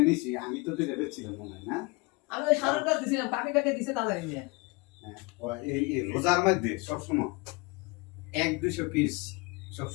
আমি তো দুইটা বেচছিলাম মনে হয় না? আমি ওই সারর কাছে দিছিলাম, কাকে দিছে তা জানি না। হ্যাঁ, এই রোজার মধ্যে সবসময় 1-200 পিস,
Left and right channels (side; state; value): right; quieter; 27.3 dB